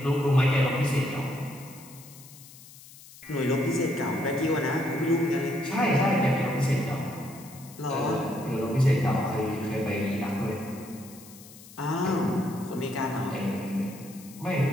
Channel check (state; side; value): noise; left; hiss, 20 dB below the sound